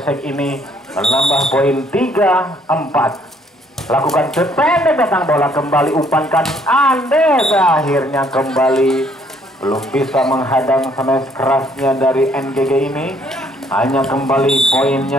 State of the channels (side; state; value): both; normal; correlation 0.65